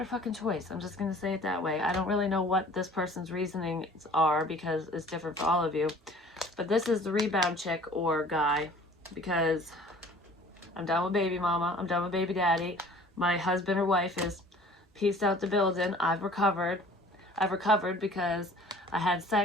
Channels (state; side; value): normal; both; correlation 0.50